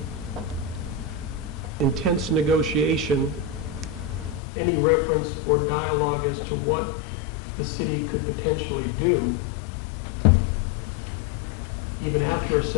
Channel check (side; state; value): right; drops out; at 4.4 s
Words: intense negotiation, any reference or dialogue as to what the city could potentially do, even after a